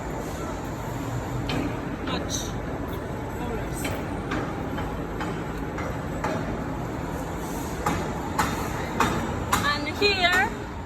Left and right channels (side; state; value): both; identical; correlation 1.00